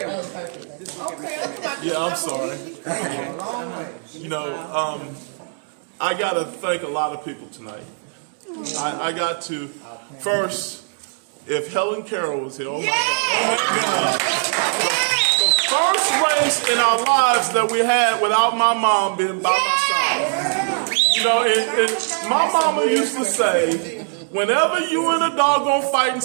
Yeah, I'm sorry. I got to thank a lot of people tonight. I got to, first, if Helen Carroll was here, oh my God. The first race in our lives that we had without my mom being by my side. And my mama used to say, whenever you in a doggone fight in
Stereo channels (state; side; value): silent; left; 57 dB below the other